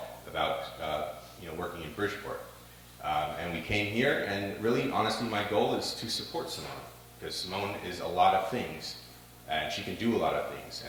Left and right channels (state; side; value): identical; both; correlation 1.00